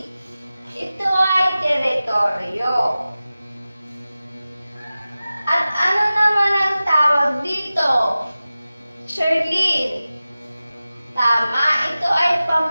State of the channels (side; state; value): both; inverted; correlation -0.96